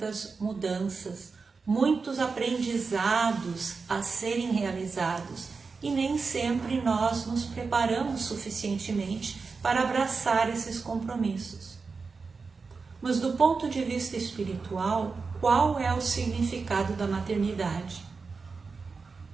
mudanças, muitos aprendizados a serem realizados e nem sempre nós nos preparamos suficientemente para abraçar esses compromissos. Mas do ponto de vista espiritual, qual é o significado da maternidade?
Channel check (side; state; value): left; quieter; 4.6 dB